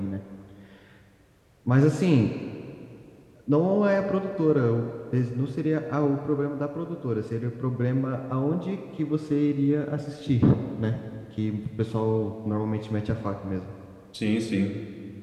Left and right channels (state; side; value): identical; both; correlation 1.00